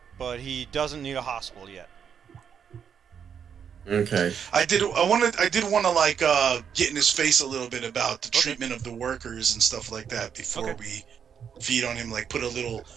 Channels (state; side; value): quieter; left; 7.6 dB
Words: but he doesn't need a hospital yet. Okay. I did want to like get in his face a little bit about the treatment of the workers and stuff like that before we feed on him. Like put a little